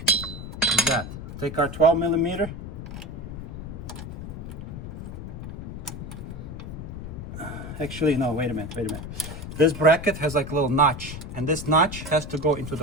Like that. Take our 12 millimeter. Actually, no, wait a minute. This bracket has like a little notch, and this notch has to go into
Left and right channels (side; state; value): left; noise; rumble, 9 dB below the sound